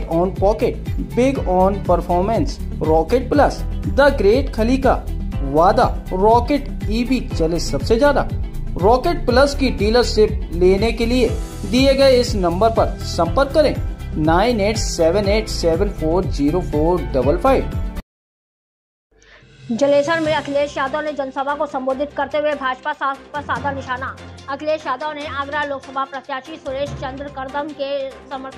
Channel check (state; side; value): identical; both; correlation 1.00